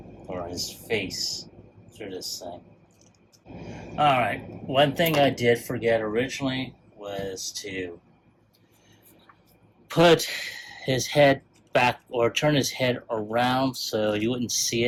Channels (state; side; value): identical; both; correlation 1.00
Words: or his face through this thing. Alright, one thing I did forget originally was to put his head back or turn his head around so you wouldn't see